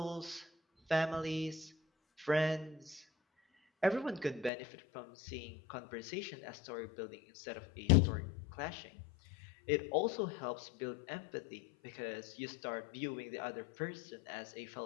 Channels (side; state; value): right; drops out; at 4.5 s